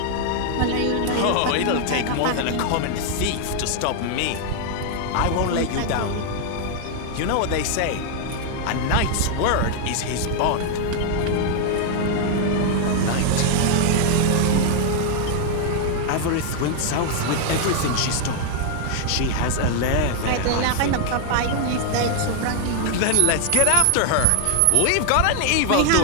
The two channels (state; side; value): different; both; correlation 0.00